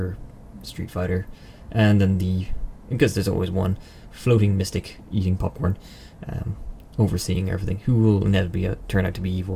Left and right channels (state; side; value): identical; both; correlation 1.00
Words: Street Fighter, and then because there's always one floating mystic eating popcorn, overseeing everything, who will inevitably turn out to be